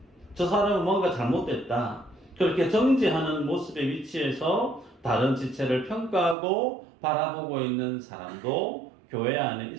저 사람은 뭔가 잘못됐다, 그렇게 정죄하는 모습의 위치에서 다른 지체를 평가하고 바라보고 있는 사람도 교회 안에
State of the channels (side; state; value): left; drops out; at 6.4 s